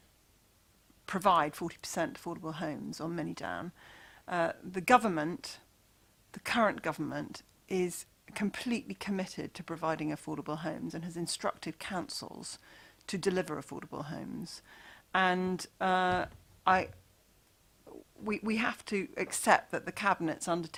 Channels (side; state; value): both; identical; correlation 1.00